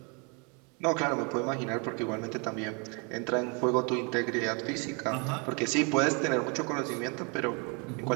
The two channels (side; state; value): left; quieter; 33.9 dB